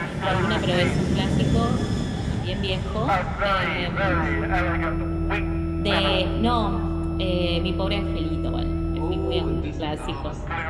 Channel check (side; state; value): both; identical; correlation 1.00